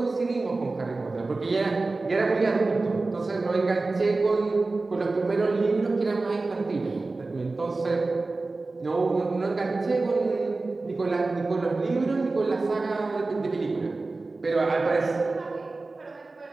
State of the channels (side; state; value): left; quieter; 3.5 dB